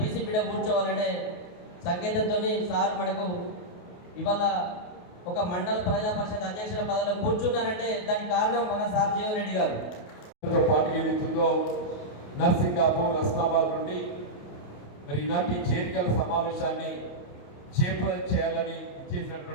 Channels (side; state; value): right; late; 28 ms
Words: బిడ్డ కూర్చోవాలనే సంకేతంతో సార్ మనకు ఇవాళ ఒక మండల ప్రజా పరిషత్ అధ్యక్షుల పదవిలో కూర్చున్నారంటే దానికి కారణం మన సార్ జీవన్ రెడ్డి గారు. పాటు ఏదైతుందో నర్సింగాపూర్, రస్తాబాద్ నుండి మరి ఈనాటి చేరికల సమావేశాన్ని చేయాలని